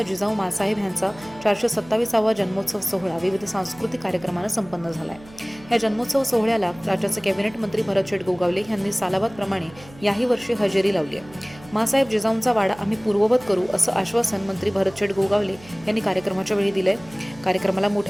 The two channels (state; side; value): noise; right; hum, 21 dB below the sound